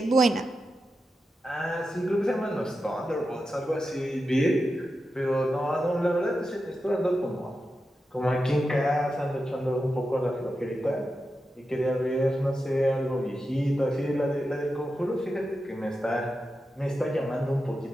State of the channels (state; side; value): normal; both; correlation 0.90